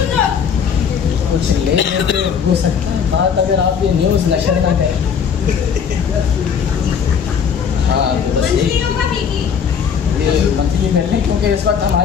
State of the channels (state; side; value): quieter; right; 7.1 dB